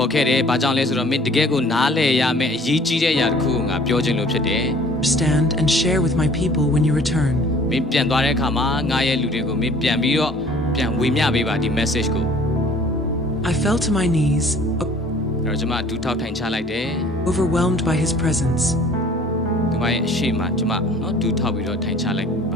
ေါ်ခဲ့တယ်ဘာကြောင့်လဲဆိုတော့မင်းတကယ်ကိုနားလည်ရမယ်အရေးကြီးတဲ့အရာတစ်ခုကိုငါပြောချင်လို့ဖြစ်တယ် understand and share with my people when you return. မင်းပြန်သွားတဲ့အခါမှာငါရဲ့လူတွေကိုမင်းပြန်ပြီးတော့ပြန်ဝေမျှပေးပါဒီ message ကို I fell to my knees, အဲ့တော့ကျမဒူးထောက်ထိုင်ချလိုက်တယ် overwhelmed by his presence, ဒီမှာရဲ့အရှိမကျမနော်ဒူးထောက်ပြီးတော့ထိုင်ချလိုက်ပ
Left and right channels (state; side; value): normal; both; correlation 0.52